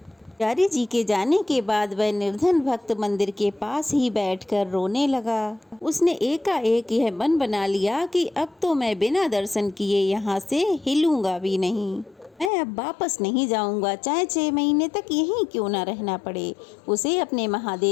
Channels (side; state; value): right; drops out; at 12.5 s